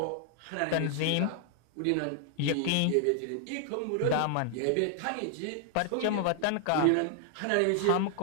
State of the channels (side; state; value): both; different; correlation 0.00